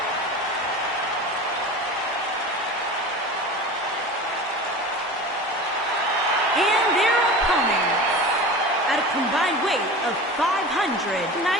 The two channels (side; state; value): both; normal; correlation 0.33